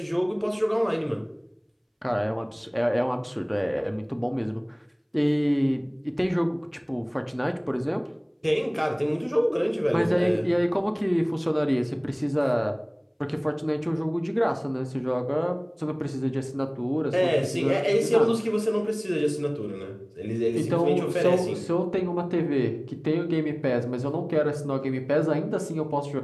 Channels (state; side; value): identical; both; correlation 1.00